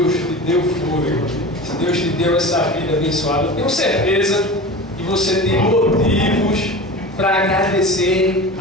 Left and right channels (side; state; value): both; normal; correlation 0.32